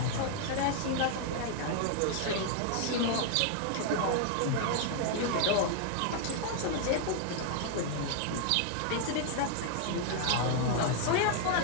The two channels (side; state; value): both; different; correlation 0.00